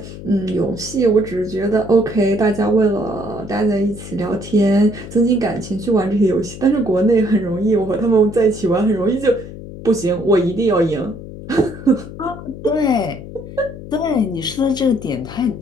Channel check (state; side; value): noise; left; hum, 13 dB below the sound